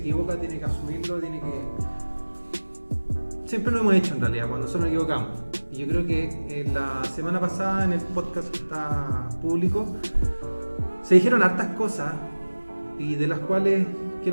tiene que asumirlo, tiene que... Siempre lo hemos hecho en realidad, cuando nosotros nos equivocamos. Y yo creo que la semana pasada en el podcast que está público se dijeron hartas cosas y de las cuales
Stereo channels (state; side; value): inverted; both; correlation -1.00